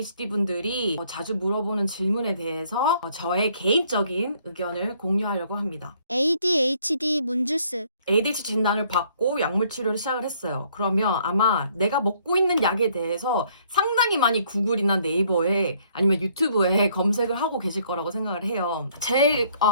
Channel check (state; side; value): inverted; both; correlation -0.64